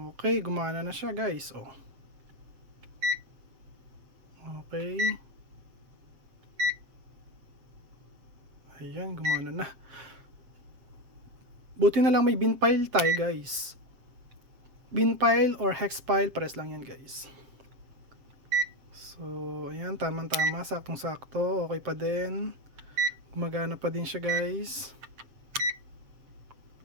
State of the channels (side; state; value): left; late; 7.6 ms